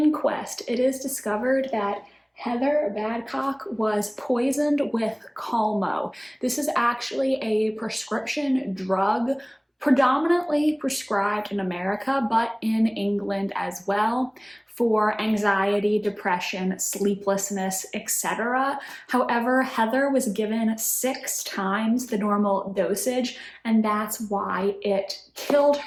it is discovered that Heather Badcock was poisoned with Calmo. This is actually a prescription drug predominantly prescribed in America, but in England as well, for anxiety, depression, sleeplessness, etc. However, Heather was given 6 times the normal dosage, and that's why it killed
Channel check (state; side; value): identical; both; correlation 1.00